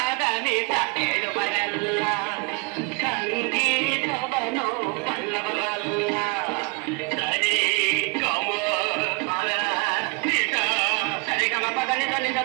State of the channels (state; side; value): quieter; left; 31.0 dB